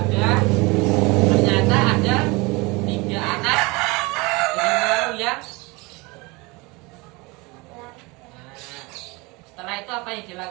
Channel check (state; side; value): quieter; left; 25.4 dB